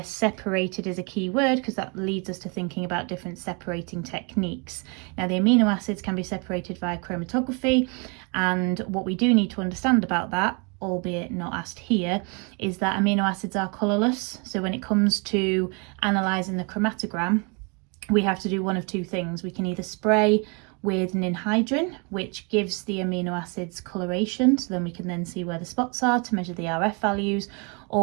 separated is a key word because that leads us to thinking about different separating techniques. Now, the amino acids can be separated via chromatography, and what we do need to understand about that, albeit not asked here, is that amino acids are colourless. So when it comes to analysing the chromatogram, we have to do one of two things. We can either spray with ninhydrin, which gives the amino acids coloration, so then we can then see where the spots are to measure the RF values,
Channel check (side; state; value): left; quieter; 33.2 dB